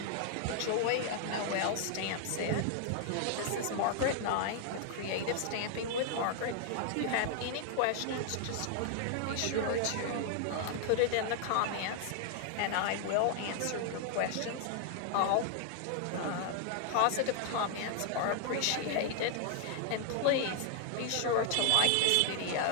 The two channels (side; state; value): both; different; correlation 0.00